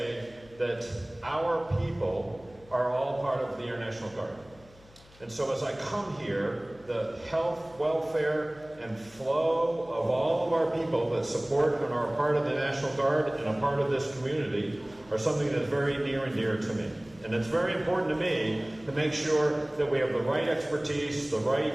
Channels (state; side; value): noise; left; hum, 25 dB below the sound